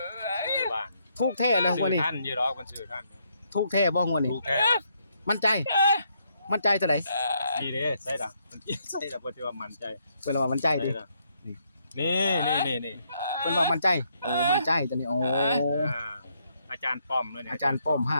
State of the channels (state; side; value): inverted; both; correlation -0.74